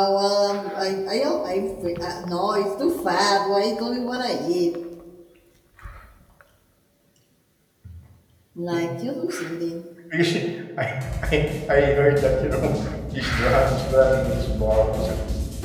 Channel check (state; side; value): identical; both; correlation 1.00